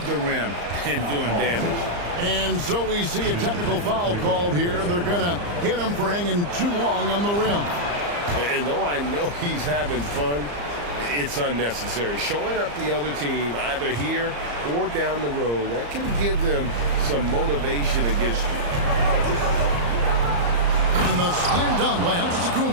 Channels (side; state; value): left; late; 34 ms